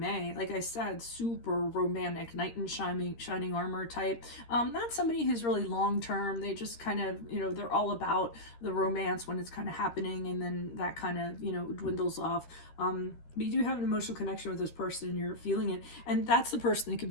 like I said, super romantic, knight in shining armor type. Not somebody who's really long term. They just kind of, you know, they're all about the romance when it's kind of happening, and then that kind of, you know, dwindles off. But you do have an emotional connection with this person and you're feeling it, and that's the person that could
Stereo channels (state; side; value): late; right; 13 ms